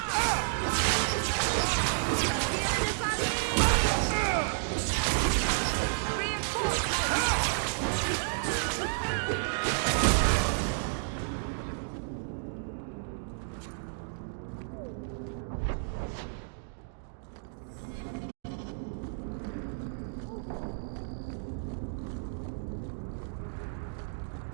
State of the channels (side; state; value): left; silent; digital silence